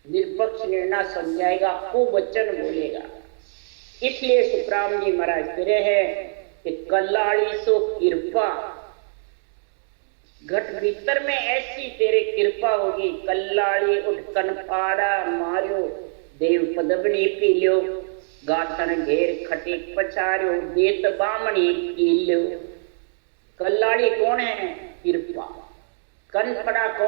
निरपक्ष निर्णय समझाएगा, कुवचन बोलेगा। इसलिए सुखराम जी महाराज कह रहे हैं कि कल्लाड़ी सो कृपा, घट भीतर में ऐसी तेरे कृपा होगी, कल्लाड़ी उठ कनपाड़ा मारियो, देव पदवनी पी लियो, गाथन घेर खटीक पछारियो, देत बामणी पी लियो। कल्लाड़ी कौन है? कृपा। कनपड़ा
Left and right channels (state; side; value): silent; left; digital silence